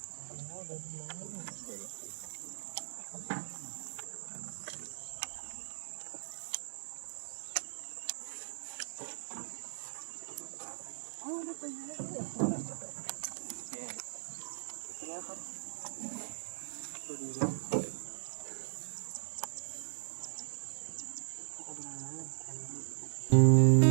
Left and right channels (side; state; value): left; silent; digital silence